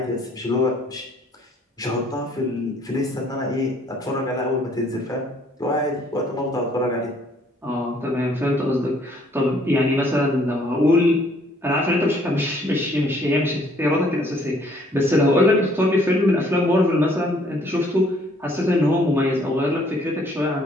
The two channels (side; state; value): both; normal; correlation 0.62